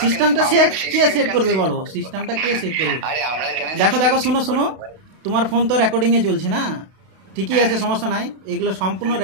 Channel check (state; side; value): late; left; 32 ms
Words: সিস্টেমটা কে সেট করবে বলো, সিস্টেমটা কে সেট করবে? আরে আমরা কেন দেখো শোনো, তোমার ফোন তো রেকর্ডিং এ চলছে না, ঠিকই আছে, সমস্যা নাই। এগুলো সম্পূর্ণ